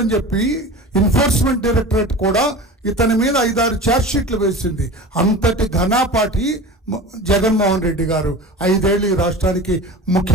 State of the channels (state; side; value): normal; both; correlation 0.34